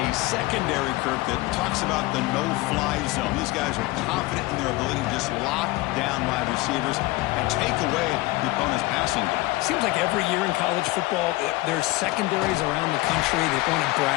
secondary, Kirk, that talks about the no-fly zone. These guys are confident in their ability to just lock down wide receivers and take away the opponent's passing game. Seems like every year in college football, there's secondaries around the country that want to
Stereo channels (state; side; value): quieter; right; 20.5 dB